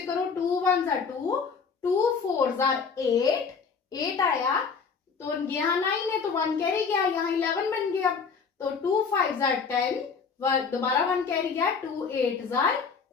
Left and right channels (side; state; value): right; quieter; 5.5 dB